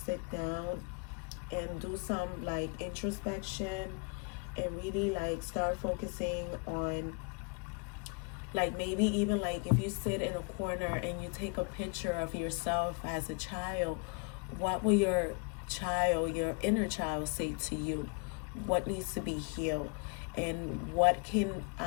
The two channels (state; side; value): quieter; right; 35.6 dB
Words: down and do some introspection, and really start focusing on maybe even if you sit in a corner and you take a picture of yourself as a child, what will your inner child say to you? What needs to be healed, and what can